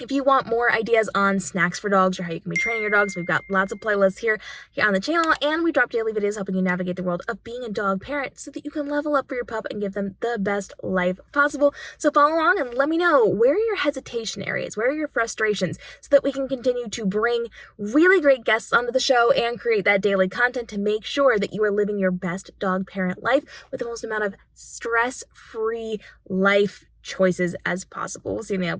you want more ideas on snacks for dogs or how you can be training your dogs, we've got lots of playlists here on the channel, and we drop daily videos helping you navigate the world of being a dog parent so that you can level up for your pup and give them the best life possible. So follow along and let me know, where are your hesitation areas? Where are your frustrations? So that we can continue to bring really great guests onto the show and create that daily content to make sure that you are living your best dog parent life with the most amount of stress-free life choices as possible. We'll see you in the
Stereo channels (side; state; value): both; identical; correlation 1.00